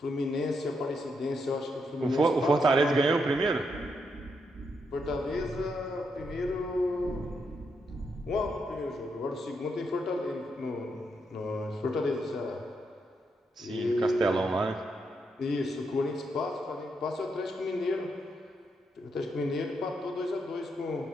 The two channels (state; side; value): normal; both; correlation 0.80